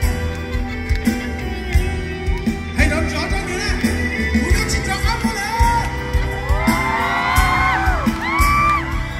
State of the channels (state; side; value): identical; both; correlation 1.00